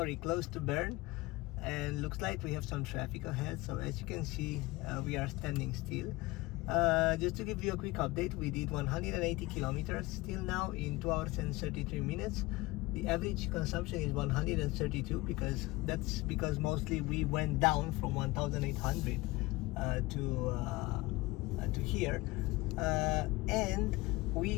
close to Bern, and looks like we have some traffic ahead. So as you can see, we are standing still. Just to give you a quick update, we did 180 kilometers till now in 2 hours and 33 minutes. The average consumption is 132, because that's because mostly we went down from 1,800 to here, and we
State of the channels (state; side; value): quieter; right; 21.0 dB